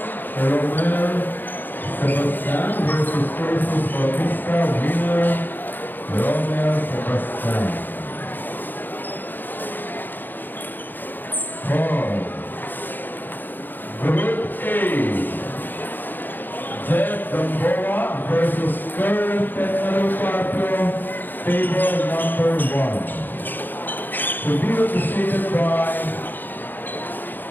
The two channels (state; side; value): late; right; 0.090 ms